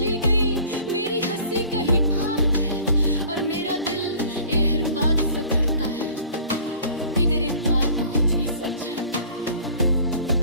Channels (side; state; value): both; inverted; correlation -0.48